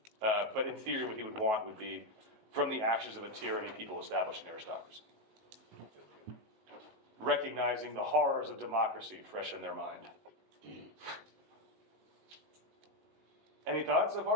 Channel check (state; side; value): late; left; 19 ms